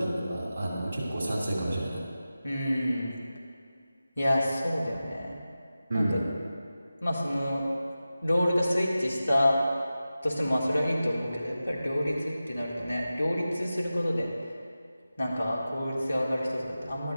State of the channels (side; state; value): both; inverted; correlation -0.94